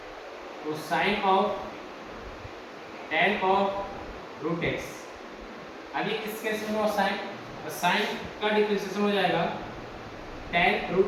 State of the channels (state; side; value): identical; both; correlation 1.00